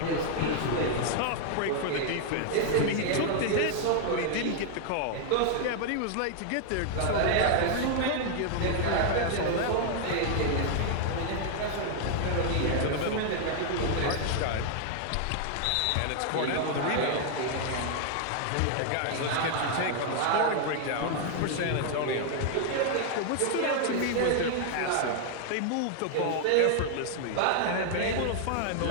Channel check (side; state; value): both; different; correlation 0.00